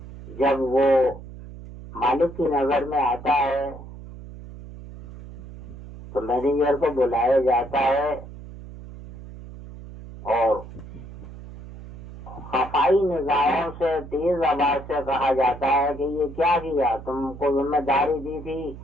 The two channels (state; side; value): noise; right; hum, 14 dB below the sound